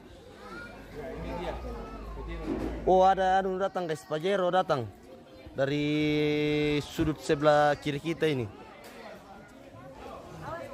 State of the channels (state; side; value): identical; both; correlation 1.00